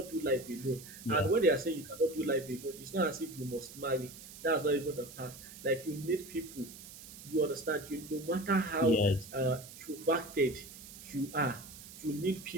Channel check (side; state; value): right; noise; hiss, 15 dB below the sound